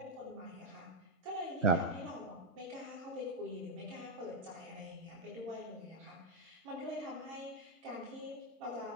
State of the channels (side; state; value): both; normal; correlation 0.02